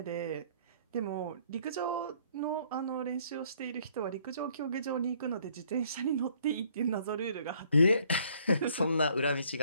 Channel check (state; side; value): inverted; both; correlation -0.62